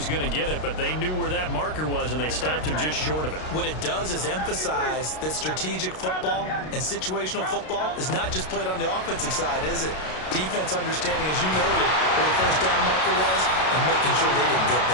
going to get it, but they knew where that marker was, and they stopped him just short of it. What it does is emphasize that strategic football and situational football is not just played on the offensive side, is it? Defense understanding, as you noted, where the first down marker was and making sure they didn't get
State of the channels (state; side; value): late; right; 32 ms